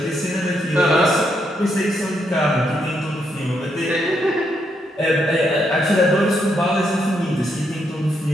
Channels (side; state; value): both; normal; correlation 0.78